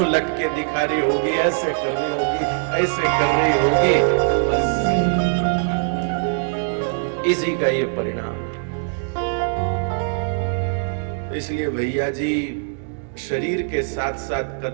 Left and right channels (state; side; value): silent; left; digital silence